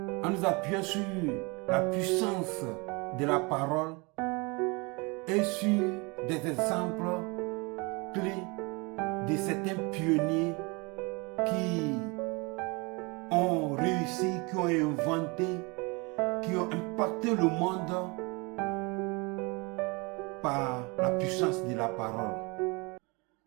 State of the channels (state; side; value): quieter; left; 28.3 dB